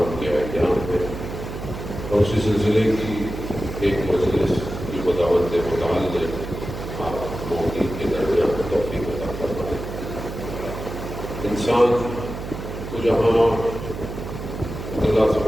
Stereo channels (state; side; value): noise; right; hum, 8 dB below the sound